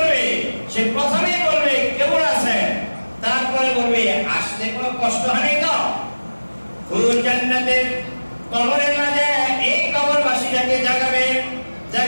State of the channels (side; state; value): both; inverted; correlation -1.00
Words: সে প্রথমেই বলবে কেমন আছেন, তারপরে বলবে আসতে কোনো কষ্ট হয় নাই তো? হুর জান্নাতের কবরের মাঝে এই কবরবাসীটাকে জাগাবে,